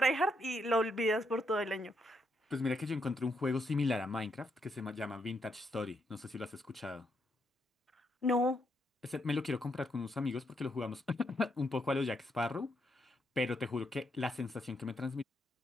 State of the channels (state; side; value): normal; both; correlation 0.78